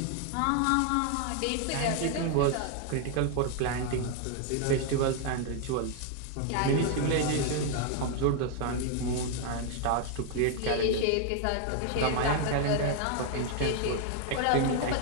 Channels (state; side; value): different; both; correlation 0.00